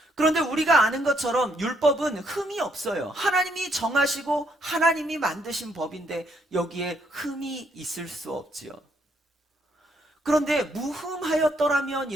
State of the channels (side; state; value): both; normal; correlation 0.72